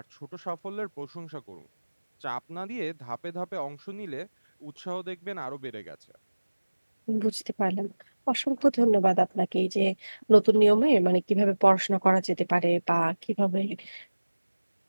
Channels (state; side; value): inverted; both; correlation -1.00